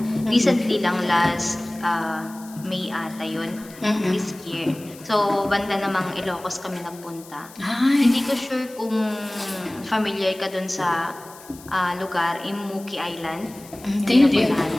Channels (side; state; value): left; noise; hiss, 20 dB below the sound